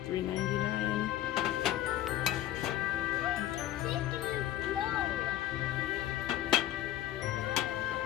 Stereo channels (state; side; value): quieter; right; 13.2 dB